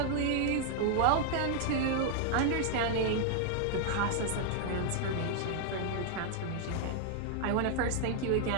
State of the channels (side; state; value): both; different; correlation 0.00